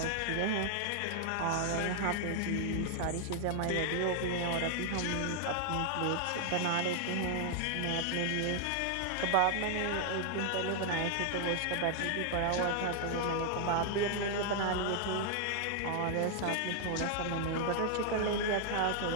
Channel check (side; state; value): both; different; correlation 0.00